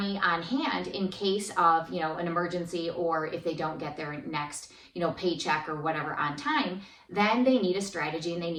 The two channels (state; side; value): identical; both; correlation 1.00